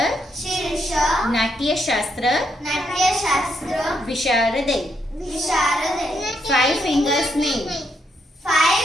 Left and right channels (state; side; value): normal; both; correlation 0.78